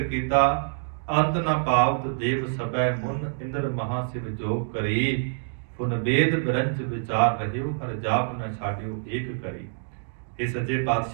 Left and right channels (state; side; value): silent; left; digital silence